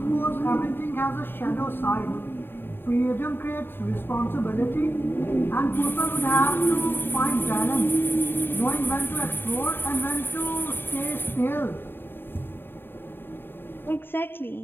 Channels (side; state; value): right; late; 0.10 ms